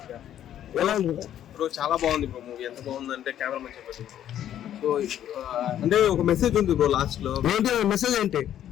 bro. చాలా బాగుంది బ్రో మూవీ. ఎంత బాగుందంటే కెమెరా మంచిగా పెట్టింది. సో అంటే ఒక మెసేజ్ ఉంది బ్రో లాస్ట్ లో. మెసేజ్ ఏంటి?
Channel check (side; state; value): right; quieter; 10.9 dB